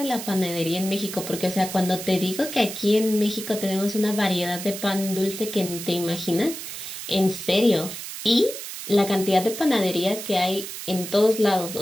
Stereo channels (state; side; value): noise; right; hiss, 9 dB below the sound